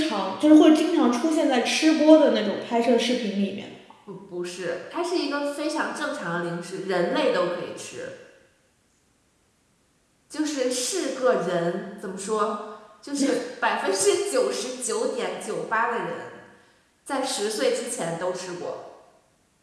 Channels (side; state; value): both; identical; correlation 1.00